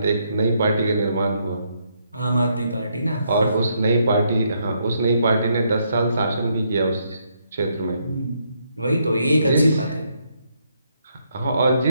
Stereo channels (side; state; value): both; inverted; correlation -0.75